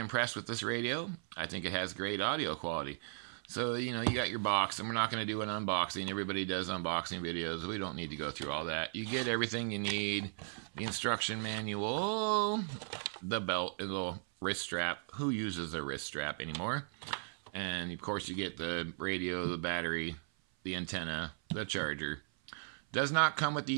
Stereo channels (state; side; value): silent; left; 53 dB below the other